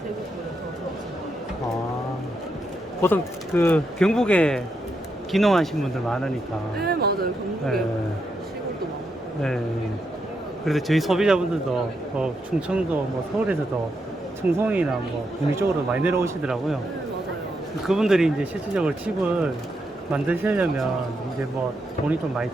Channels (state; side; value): normal; both; correlation 0.82